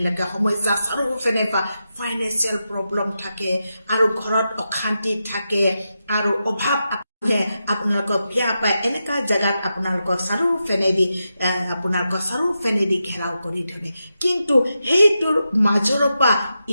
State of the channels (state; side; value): inverted; both; correlation -0.88